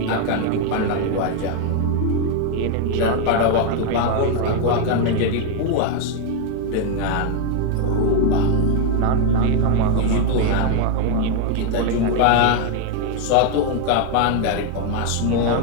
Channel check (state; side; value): different; both; correlation 0.01